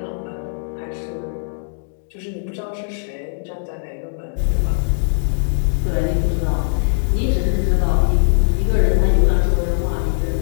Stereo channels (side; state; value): right; silent; digital silence